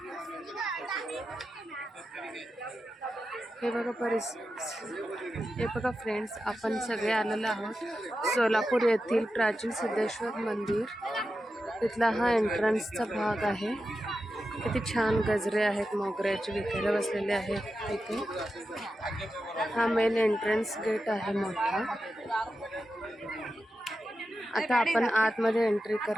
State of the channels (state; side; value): normal; both; correlation 0.90